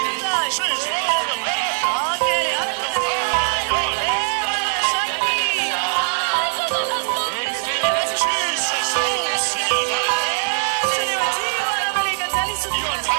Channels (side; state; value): left; silent; digital silence